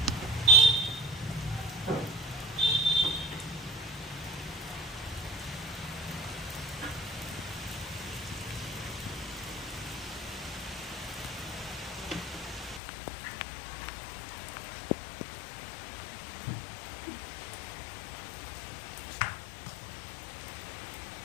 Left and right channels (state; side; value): drops out; right; at 12.8 s